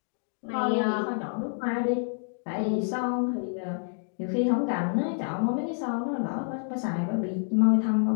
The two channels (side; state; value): right; silent; digital silence